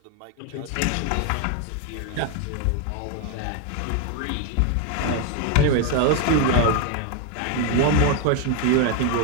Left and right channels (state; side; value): different; both; correlation 0.01